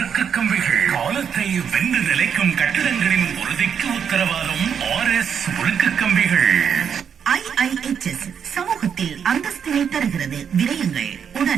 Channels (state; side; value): quieter; left; 7.5 dB